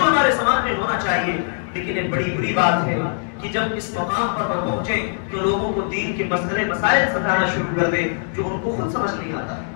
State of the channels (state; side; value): silent; right; digital silence